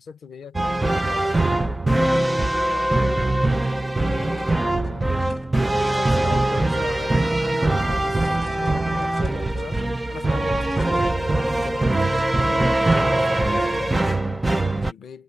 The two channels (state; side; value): normal; both; correlation 0.97